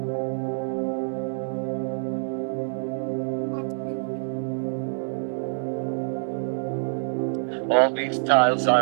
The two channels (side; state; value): left; silent; 57 dB below the other